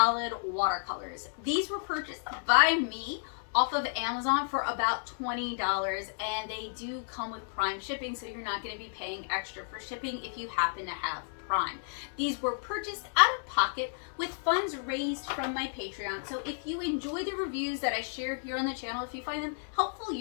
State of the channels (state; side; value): silent; right; 56 dB below the other